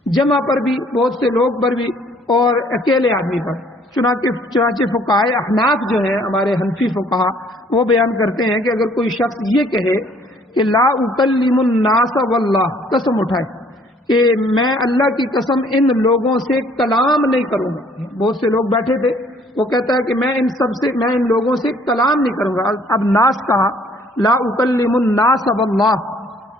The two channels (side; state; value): both; normal; correlation 0.60